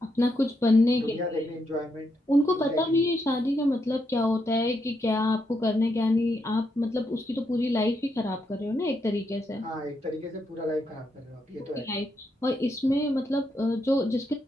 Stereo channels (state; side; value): normal; both; correlation 0.80